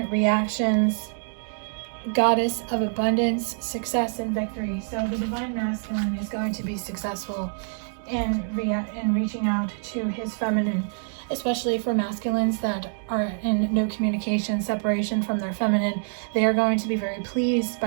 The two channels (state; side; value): silent; left; 61 dB below the other